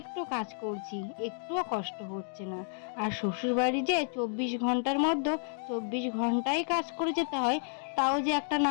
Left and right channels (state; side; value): silent; right; digital silence